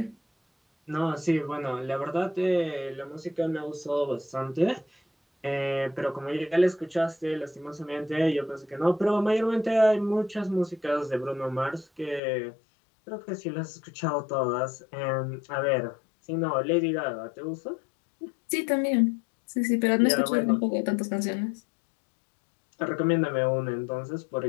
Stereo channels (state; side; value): drops out; right; at 12.2 s